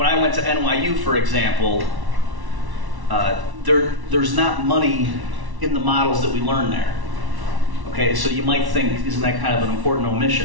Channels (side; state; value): left; late; 1.1 ms